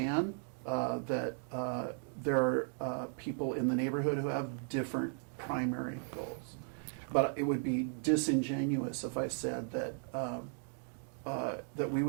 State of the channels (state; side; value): silent; left; 54 dB below the other